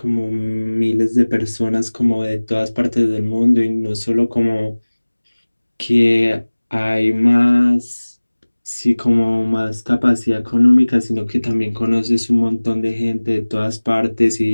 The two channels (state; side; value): inverted; both; correlation -1.00